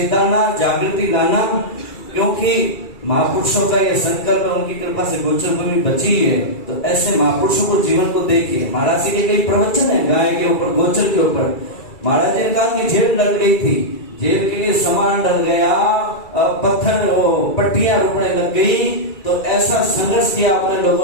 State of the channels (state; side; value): late; right; 2.3 ms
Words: जागृति लाना। क्योंकि महापुरुषों का यह संकल्प है, उनकी कृपा से गोचर भूमि बची है। तो ऐसे महापुरुषों को जीवन को देखिए। महाराज जी के कई प्रवचन है गाय के ऊपर, गोचर के ऊपर। महाराज जी ने कहा कि जेल डल गई थी, जेल के लिए सामान डल गया, पत्थर पट्टियां रुकने लग गई, तो ऐसा संघर्ष किया अपने